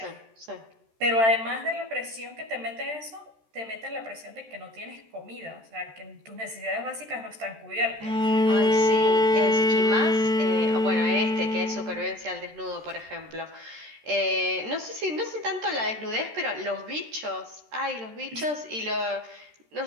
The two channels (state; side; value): late; left; 13 ms